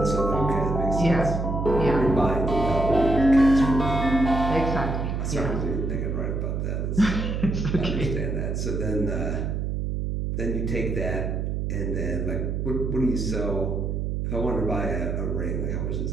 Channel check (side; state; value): right; noise; hum, 1 dB below the sound